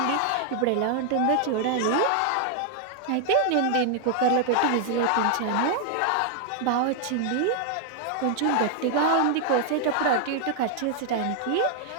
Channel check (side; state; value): both; different; correlation 0.00